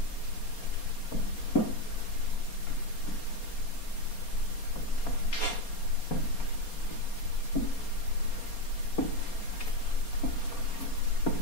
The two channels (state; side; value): late; right; 4.3 ms